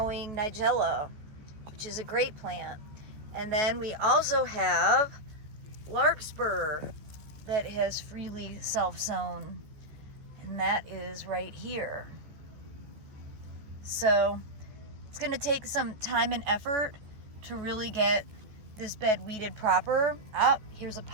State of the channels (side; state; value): left; late; 14 ms